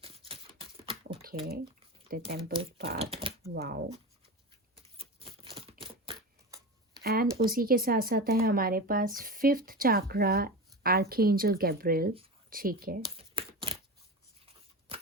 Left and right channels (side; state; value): both; normal; correlation 0.25